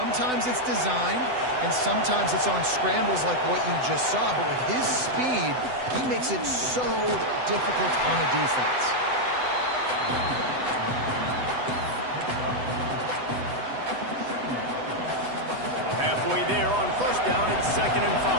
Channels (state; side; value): late; left; 8.0 ms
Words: it's designed, and sometimes it's on scrambles like what you just saw. But with his speed, he makes it so difficult on a defense. Halfway there on first down, it's 2nd and